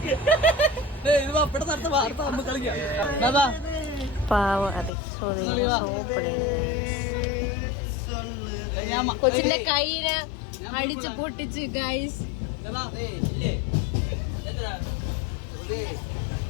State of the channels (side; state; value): right; drops out; at 4.9 s